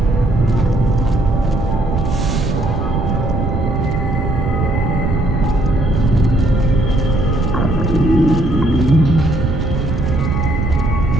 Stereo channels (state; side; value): noise; right; rumble, 2 dB below the sound